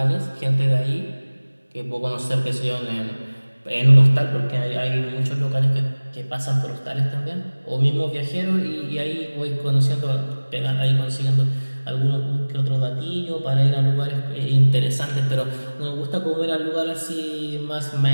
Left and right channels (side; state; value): both; inverted; correlation -1.00